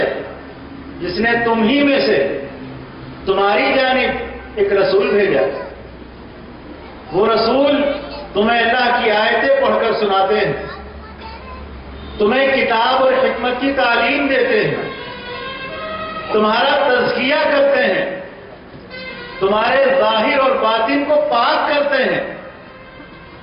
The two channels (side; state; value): both; identical; correlation 1.00